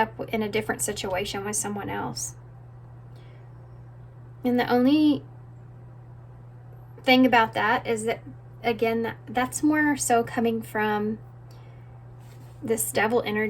in a different situation with someone else. And the only thing about that is that, again, that's more so coming from this devil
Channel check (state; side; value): identical; both; correlation 1.00